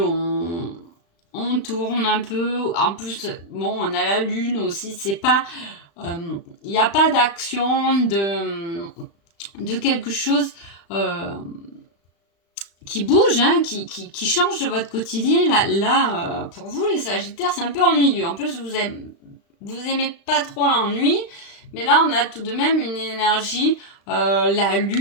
on tourne un peu. En plus, bon, on a la lune aussi. C'est pas, il n'y a pas d'action de quelque chose qui bouge, hein, qui change de votre quotidien. Là pour vous, les Sagittaires, c'est un peu ennuyeux. En plus, vous aimez pas trop l'ennui, mais là, on a tout de même une énergie. La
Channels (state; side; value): late; right; 35 ms